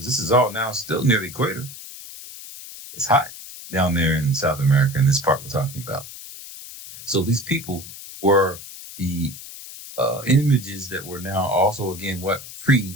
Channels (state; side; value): noise; left; hiss, 14 dB below the sound